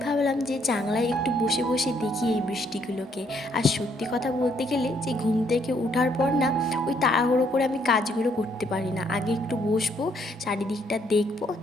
ভাবলাম যে জানলায় একটু বসে বসে দেখি এই বৃষ্টিগুলোকে। আর সত্যি কথা বলতে গেলে যে ঘুম থেকে ওঠার পর না ওই তাড়াহুড়ো করে আমি কাজগুলো করতে পারি না। আগে একটু বসবো, চারিদিকটা দেখবো,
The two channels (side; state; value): both; normal; correlation 0.69